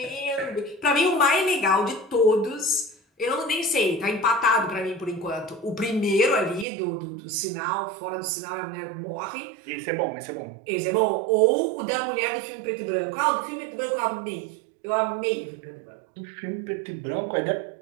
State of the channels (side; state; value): left; drops out; at 6.7 s